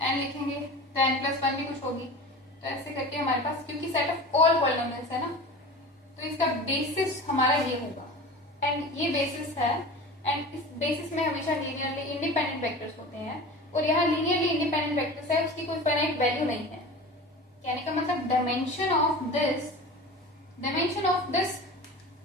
लिखेंगे तो n+1 भी कुछ होगी। तो ऐसे करके हमारे पास, क्योंकि सेट ऑफ ऑल पॉलिनोमियल्स है ना, तो इसका बेसिस हमारा ये होगा, एंड ये बेसिस है, एंड इस बेसिस में हमेशा लीनियरली इंडिपेंडेंट वेक्टर्स होते हैं, और यहाँ लीनियरली इंडिपेंडेंट वेक्टर्स है, उसकी कोई फाइनाइट वैल्यू नहीं है। कहने का मतलब डायमेंशन ऑफ दिस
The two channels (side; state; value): both; normal; correlation 0.34